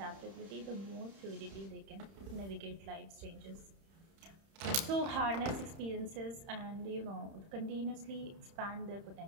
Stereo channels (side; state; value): left; late; 31 ms